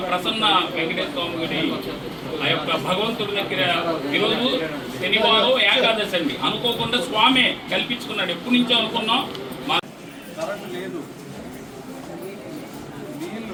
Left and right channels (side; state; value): both; identical; correlation 1.00